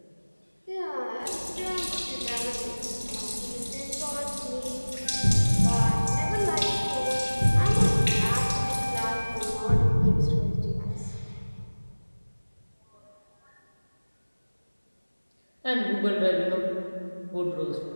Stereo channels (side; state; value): both; inverted; correlation -1.00